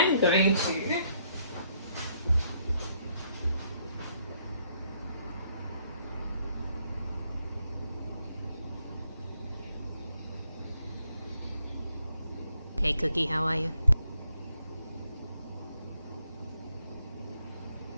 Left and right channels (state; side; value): inverted; both; correlation -0.72